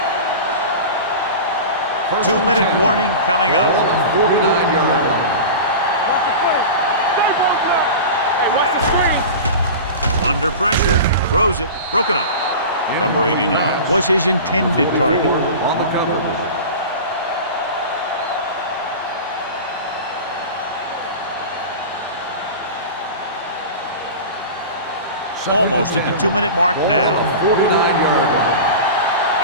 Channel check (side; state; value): both; inverted; correlation -0.31